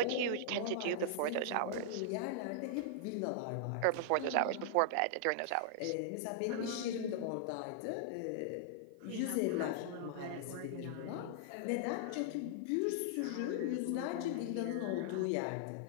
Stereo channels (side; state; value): both; different; correlation -0.01